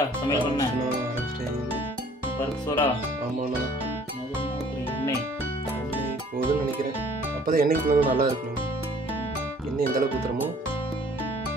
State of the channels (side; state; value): both; normal; correlation 0.55